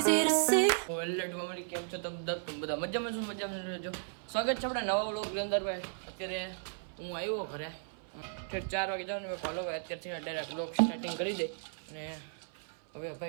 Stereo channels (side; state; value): left; silent; 55 dB below the other